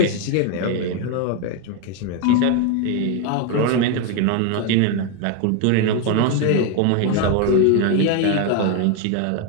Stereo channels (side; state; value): both; different; correlation 0.01